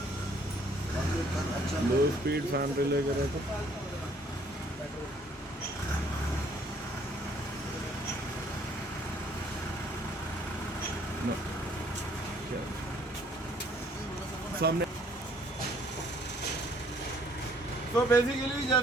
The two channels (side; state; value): both; normal; correlation 0.62